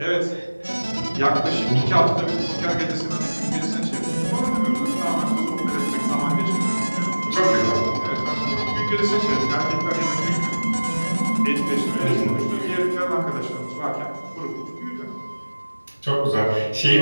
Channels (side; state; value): both; inverted; correlation -1.00